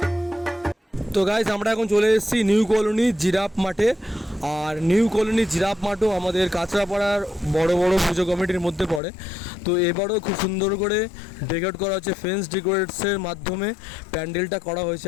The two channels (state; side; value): drops out; right; at 9.0 s